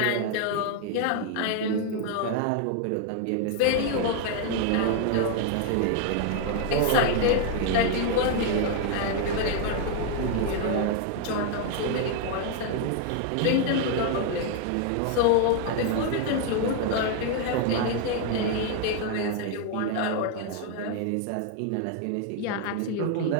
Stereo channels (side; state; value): both; different; correlation 0.00